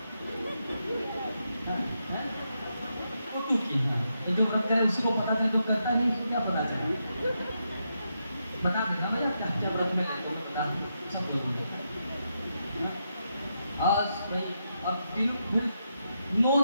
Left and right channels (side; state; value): both; inverted; correlation -0.83